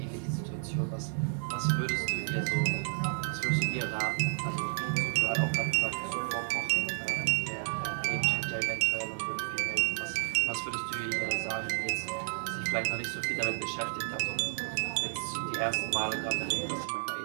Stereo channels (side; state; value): left; silent; digital silence